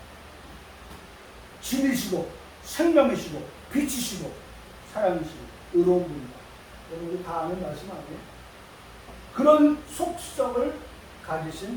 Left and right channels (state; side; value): identical; both; correlation 1.00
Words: 진리시고 생명이시고 빛이시고 사랑이시고 의로운 분이다. 여러분 다 아는 말씀 아니에요? 그런 속성을